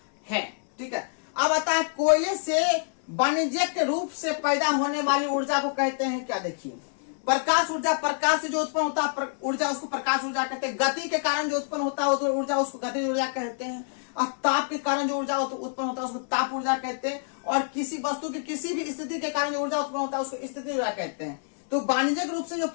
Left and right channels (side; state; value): right; silent; 59 dB below the other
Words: है, ठीक है। अब आता है कोयले से वाणिज्यिक रूप से पैदा होने वाली ऊर्जा को कहते हैं क्या? देखिए, प्रकाश ऊर्जा, प्रकाश से जो उत्पन्न होता है ऊर्जा उसको प्रकाश ऊर्जा कहते हैं। गति के कारण जो उत्पन्न होता है ऊर्जा उसको गति ऊर्जा कहते हैं। और ताप के कारण जो ऊर्जा उत्पन्न होता है उसको ताप ऊर्जा कहते हैं। और किसी वस्तु की किसी भी स्थिति के कारण जो ऊर्जा उत्पन्न होता है उसको स्थिति ऊर्जा कहते हैं। तो वाणिज्यिक रूप से जो